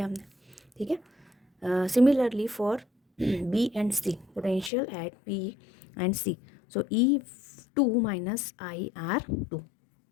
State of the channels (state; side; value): drops out; right; at 4.7 s